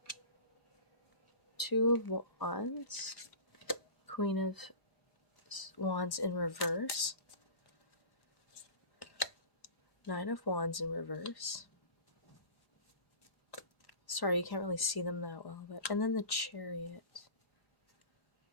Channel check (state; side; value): late; right; 4.9 ms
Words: 2 of Wands. Queen of Wands in reverse. 9 of Wands in reverse. Sorry, you can't really see them that well, but and then the Chariot.